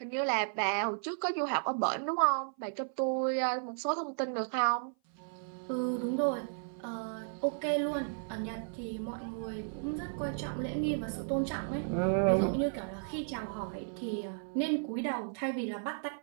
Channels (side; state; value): left; silent; 55 dB below the other